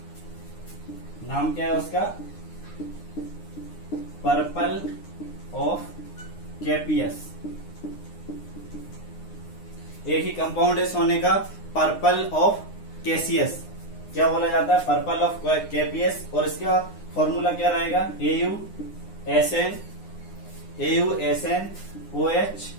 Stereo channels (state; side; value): late; right; 9.8 ms